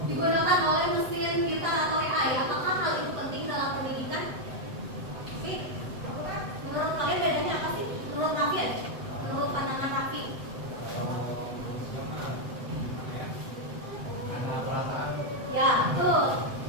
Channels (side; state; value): left; late; 7.9 ms